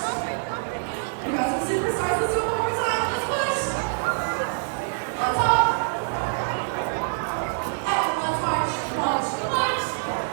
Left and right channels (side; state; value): left; silent; digital silence